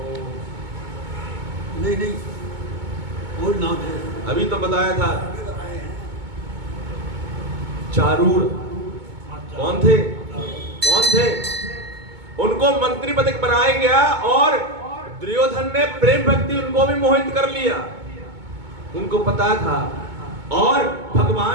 नहीं नहीं, और नाम थे, अभी तो बताया था। बताए हैं। चारूर कौन थे? कौन थे? उनको मंत्री पद बनाया गया, और दुर्योधन ने प्रेम भक्ति उनको भी मोहित कर लिया। उनको पता था, और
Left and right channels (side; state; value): left; late; 2.2 ms